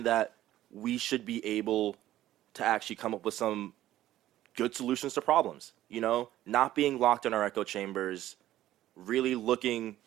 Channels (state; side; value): quieter; left; 13.8 dB